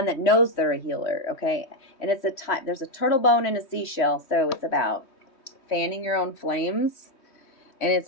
that knows they're a healer, okay? And it's there's a turtle bone and a seashell, so it's about fanning your own flames, and it's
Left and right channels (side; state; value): right; late; 3.2 ms